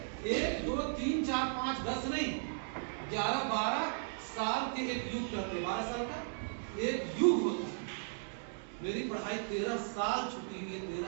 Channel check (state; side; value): silent; left; digital silence